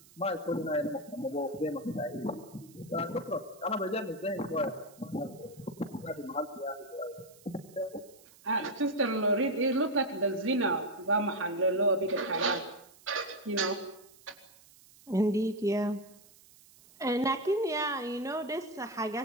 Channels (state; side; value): noise; right; hiss, 24 dB below the sound